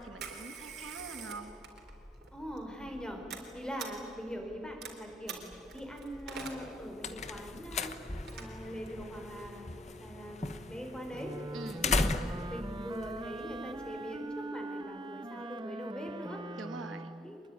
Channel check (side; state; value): both; normal; correlation 0.69